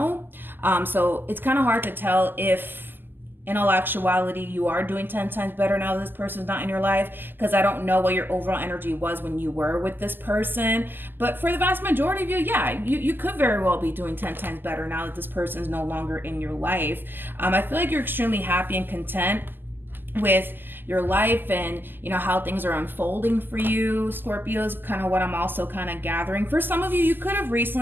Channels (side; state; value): left; late; 0.093 ms